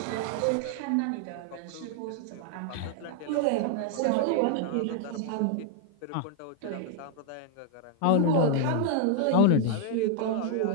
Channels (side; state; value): both; different; correlation 0.00